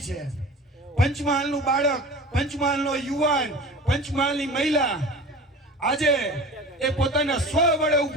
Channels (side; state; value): both; normal; correlation 0.38